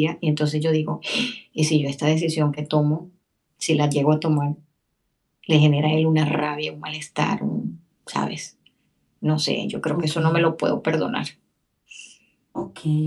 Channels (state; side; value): identical; both; correlation 1.00